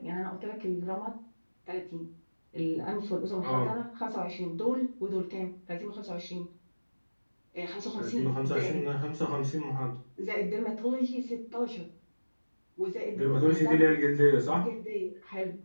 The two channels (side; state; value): both; inverted; correlation -1.00